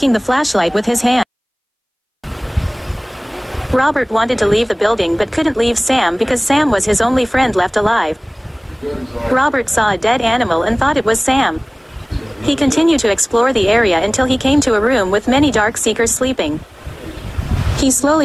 the flashlight with his hand. Robert wanted to leave the building but couldn't leave Sam because Sam was his only friend left alive. Robert saw a dead animal and thought it was Sam. He continued to explore the area until he came to a room with many dark seekers sleeping. He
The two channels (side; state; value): both; identical; correlation 1.00